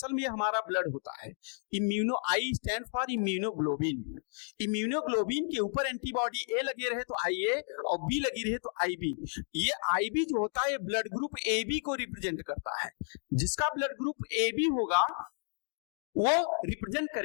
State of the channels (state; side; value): silent; right; 56 dB below the other